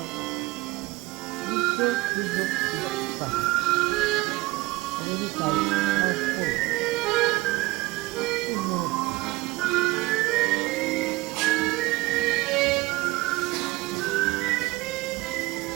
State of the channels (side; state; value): left; quieter; 20.6 dB